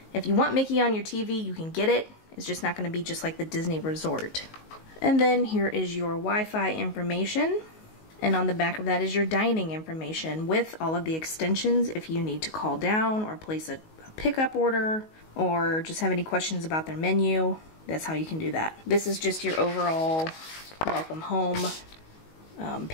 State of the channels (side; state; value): right; late; 19 ms